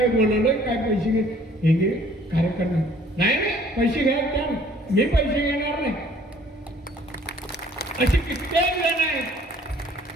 बोलवलं, काय पैसे घे, हे घे कार्यकर्ता. नाही पैसे घ्या, त्या मी पैसे घेणार नाही. अशी कित्येक जण आहेत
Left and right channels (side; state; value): both; normal; correlation 0.57